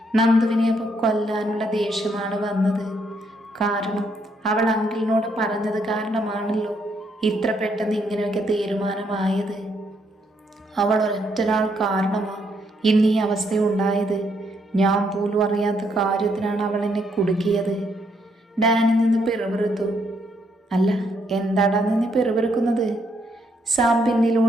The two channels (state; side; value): normal; both; correlation 0.74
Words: നന്ദുവിനെ അപ്പോൾ കൊല്ലാനുള്ള ദേഷ്യമാണ് വന്നത്. കാരണം അവൾ അങ്കിളിനോട് പറഞ്ഞത് കാരണമാണല്ലോ ഇത്ര പെട്ടെന്ന് ഇങ്ങനെയൊക്കെ തീരുമാനമായത്. അവൾ ഒരൊറ്റൊരാൾ കാരണമാണ് ഇന്ന് ഈ അവസ്ഥയുണ്ടായത്. ഞാൻ പോലും അറിയാത്ത കാര്യത്തിനാണ് അവൾ എന്നെ കുടുക്കിയത്. ഡാനി നിന്ന് പിറുപിറുത്തു. അല്ല, എന്താടാ നിന്ന് പിറുപിറുക്കുന്നത്? സാം